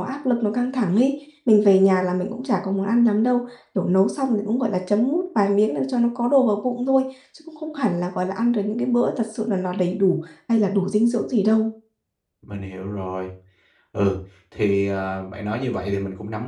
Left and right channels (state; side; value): identical; both; correlation 1.00